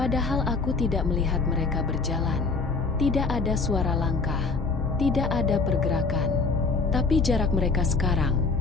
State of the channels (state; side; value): quieter; right; 4.1 dB